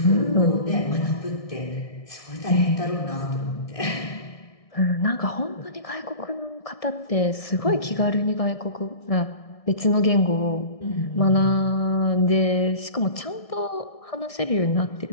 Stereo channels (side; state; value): right; late; 1.6 ms